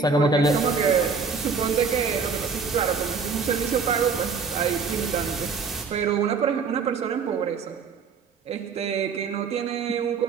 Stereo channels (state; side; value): quieter; left; 5.3 dB